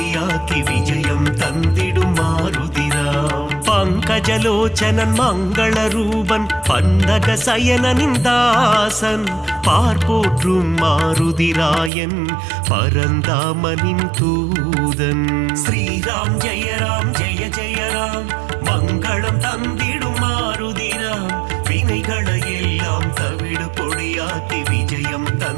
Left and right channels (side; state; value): left; drops out; at 11.9 s